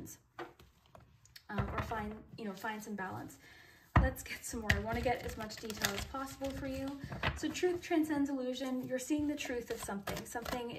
or find some balance. Let's get some more. I want to get as much detail as possible for you. So truth transcends illusion. You're seeing the truth of something. Something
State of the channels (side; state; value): both; identical; correlation 1.00